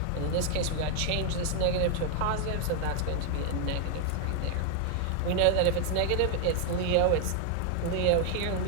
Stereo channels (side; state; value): both; different; correlation 0.00